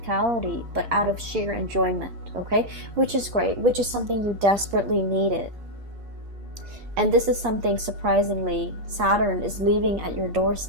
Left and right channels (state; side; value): late; left; 8.5 ms